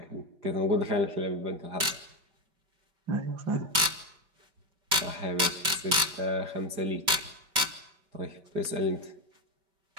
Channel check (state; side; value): late; left; 5.2 ms